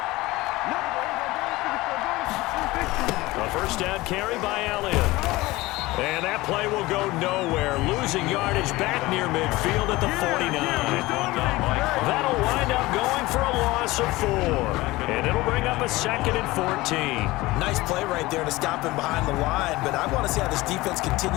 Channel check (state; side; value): quieter; right; 19.8 dB